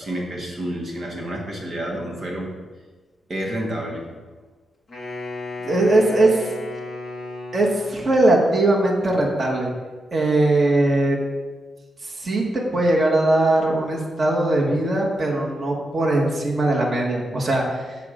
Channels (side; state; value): both; normal; correlation 0.85